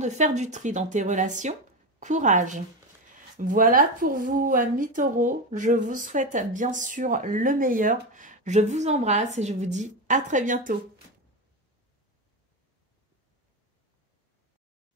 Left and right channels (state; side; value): normal; both; correlation 0.17